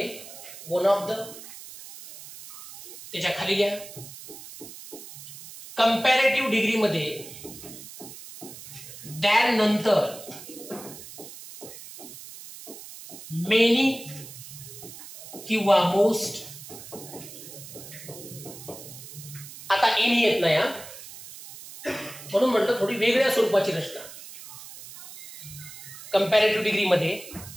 वन ऑफ द, त्याच्या खाली घ्या कंपॅरेटिव्ह डिग्री मध्ये दॅन नंतर मेनी किंवा मोस्ट. आता एनी येत नाही म्हणून म्हटलं थोडी वेगळ्या स्वरूपाची रचना. कंपॅरेटिव्ह डिग्री मध्ये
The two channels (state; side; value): noise; right; hiss, 15 dB below the sound